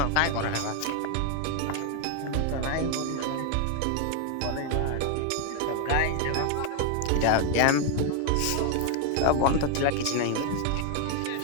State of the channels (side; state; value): both; different; correlation 0.00